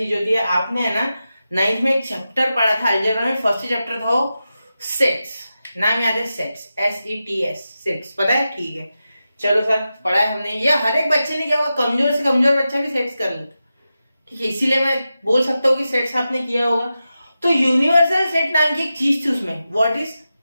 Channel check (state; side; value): inverted; both; correlation -0.91